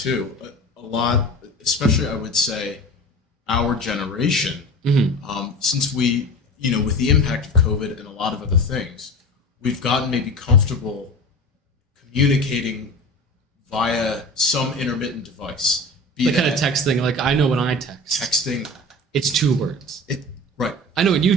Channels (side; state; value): both; normal; correlation 0.33